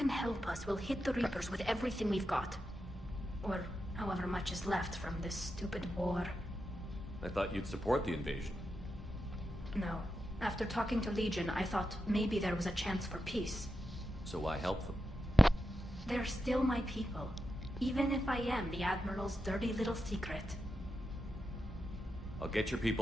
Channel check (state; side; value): normal; both; correlation 0.88